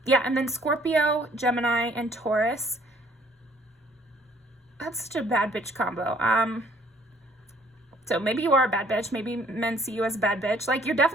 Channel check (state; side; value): normal; both; correlation 0.60